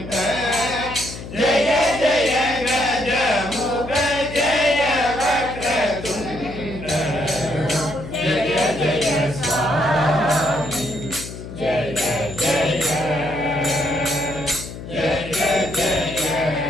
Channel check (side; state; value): left; noise; hum, 11 dB below the sound